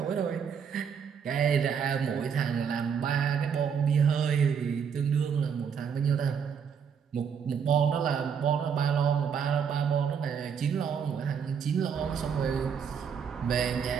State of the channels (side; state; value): left; quieter; 7.0 dB